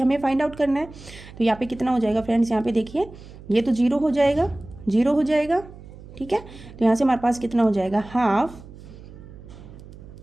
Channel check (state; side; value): noise; right; hum, 17 dB below the sound